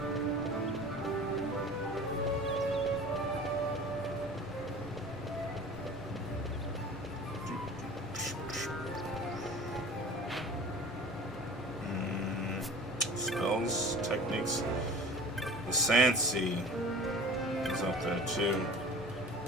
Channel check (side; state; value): both; normal; correlation 0.41